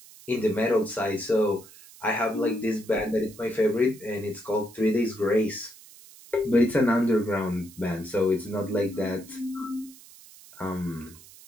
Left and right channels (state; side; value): noise; right; hiss, 21 dB below the sound